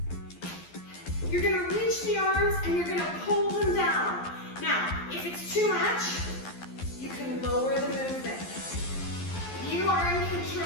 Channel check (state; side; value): late; right; 12 ms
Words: You're gonna reach the arms and you're gonna pull them down. Now, if it's too much, you can lower the movement. You are in